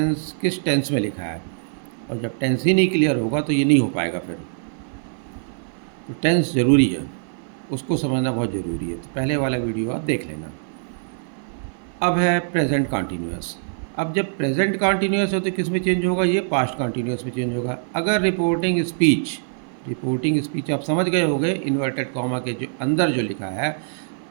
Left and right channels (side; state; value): left; silent; 57 dB below the other